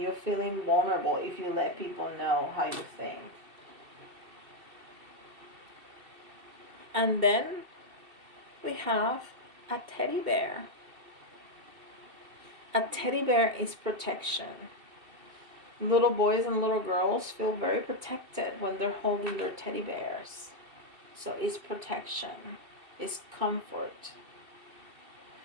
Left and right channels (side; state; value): left; late; 2.7 ms